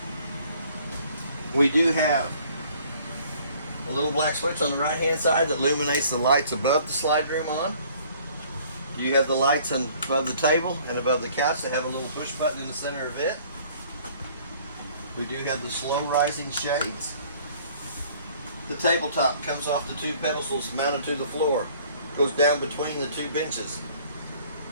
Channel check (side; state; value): both; inverted; correlation -0.56